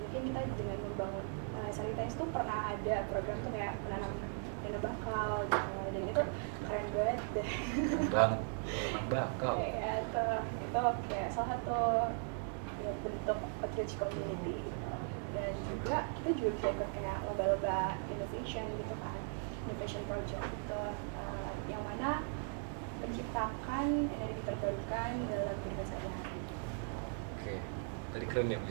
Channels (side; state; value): left; silent; 52 dB below the other